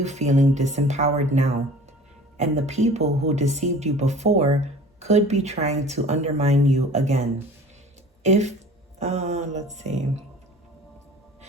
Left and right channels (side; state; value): both; normal; correlation 0.45